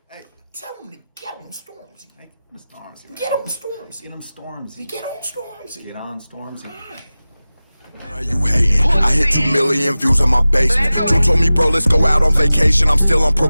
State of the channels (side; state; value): both; inverted; correlation -0.96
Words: Hey, tell him to get on Stormzy. Hey, get on Stormzy. Get on Stormzy. Get on Stormzy. Get on Stormzy. Get on Stormzy. Why you hating? I hit 2 million views on my basement. Drew told me, bro, let's go out on vacation. I'm still on